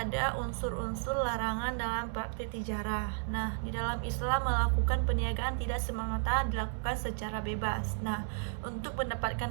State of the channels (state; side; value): silent; left; 56 dB below the other